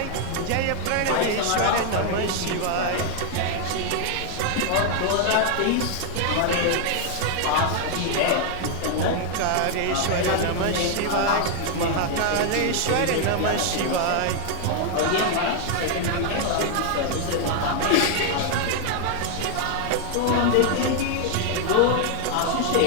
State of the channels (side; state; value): both; different; correlation 0.00